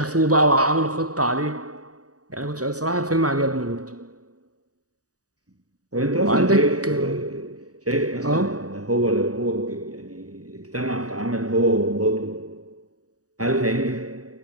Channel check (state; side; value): late; left; 0.67 ms